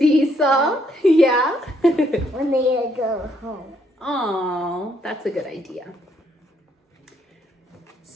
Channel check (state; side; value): normal; both; correlation 0.71